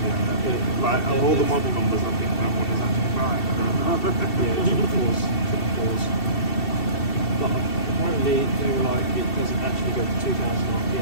yeah. Like, of all the model numbers, I think that one is actually right. I don't know. Yeah, triple fours. But apparently they were like, it doesn't actually go to 2000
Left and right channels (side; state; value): right; late; 2.7 ms